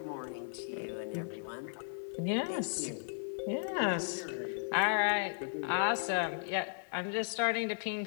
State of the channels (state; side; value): silent; right; 54 dB below the other